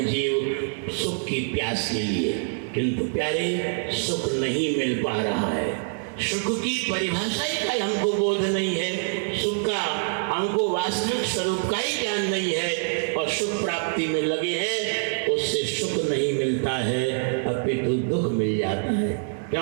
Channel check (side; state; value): left; silent; 62 dB below the other